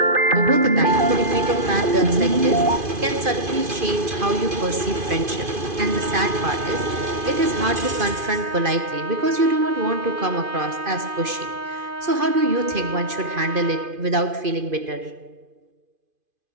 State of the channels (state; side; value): late; left; 2.5 ms